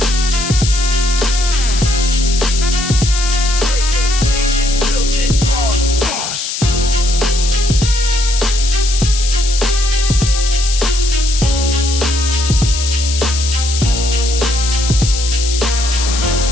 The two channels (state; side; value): noise; left; hiss, 5 dB below the sound